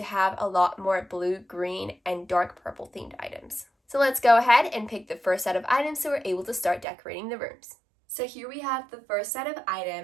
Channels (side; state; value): left; drops out; at 6.9 s